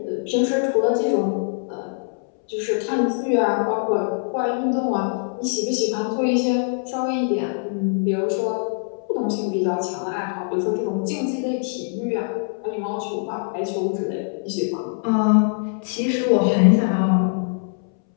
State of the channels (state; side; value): silent; right; 64 dB below the other